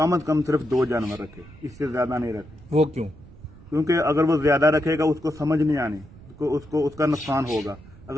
से कम सिर्फ 2 जानवर रखे, इससे ज्यादा नहीं रखे। वो क्यों? क्योंकि अगर वो ज्यादा रखेगा उसको समझ नहीं आनी, उसको उसका नुकसान होगा।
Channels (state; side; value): noise; right; rumble, 21 dB below the sound